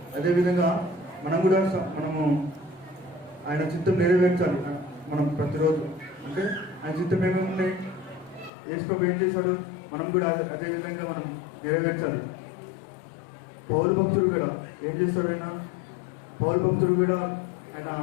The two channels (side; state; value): right; drops out; at 8.5 s